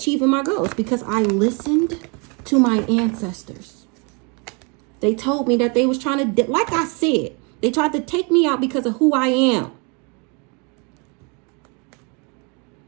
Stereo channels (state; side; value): quieter; left; 32.9 dB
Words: my goals because I listened to my ancestors. They told me that they was trying to, like I said, they tried to take me out because of who I am.